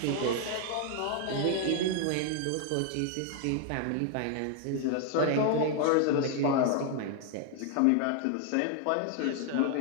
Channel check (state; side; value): different; both; correlation 0.00